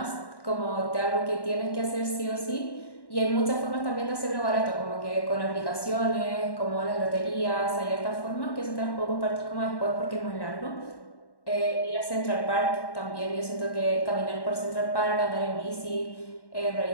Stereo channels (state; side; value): late; right; 1.1 ms